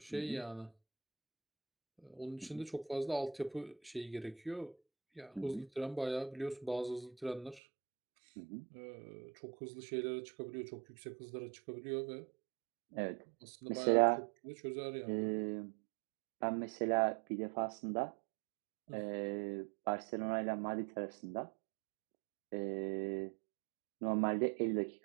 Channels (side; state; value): left; drops out; at 7.6 s